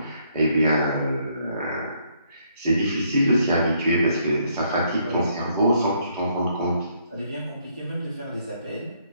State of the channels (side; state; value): both; inverted; correlation -0.70